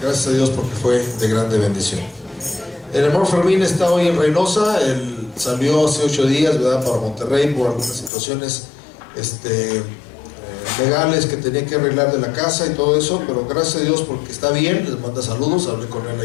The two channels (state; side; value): drops out; right; at 8.1 s